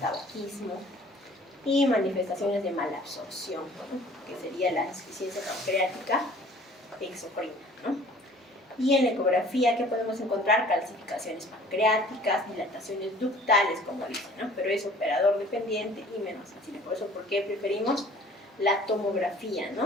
y manifestaciones de malabsorción, ¿no? Que sería la insuficiencia pancreática exocrina, ¿no? Y en la ecografía, ¿qué podemos encontrar? Calcificaciones pancreáticas, dilataciones ductales, como dicen, ¿no? Pero es operador dependiente y menos sensible. Por eso, ¿por qué preferimos la tomografía,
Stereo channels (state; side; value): normal; both; correlation 0.51